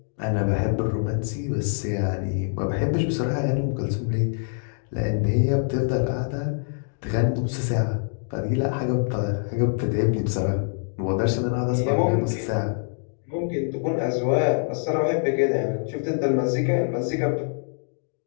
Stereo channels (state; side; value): silent; right; digital silence